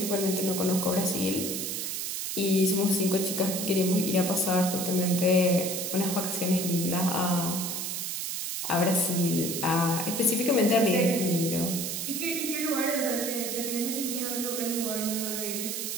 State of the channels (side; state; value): right; noise; hiss, 3 dB below the sound